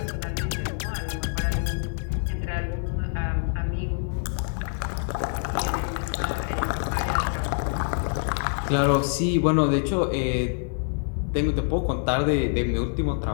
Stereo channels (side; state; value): right; silent; 57 dB below the other